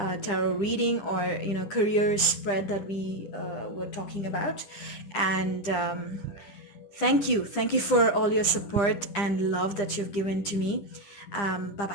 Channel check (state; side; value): late; right; 10 ms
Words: tarot reading, or career spread that we were talking about. And thank you for all your support and love that you've given to me. Bye